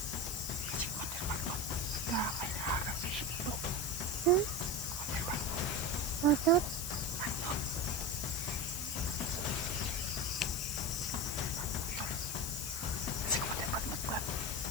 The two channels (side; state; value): left; noise; hiss, 4 dB below the sound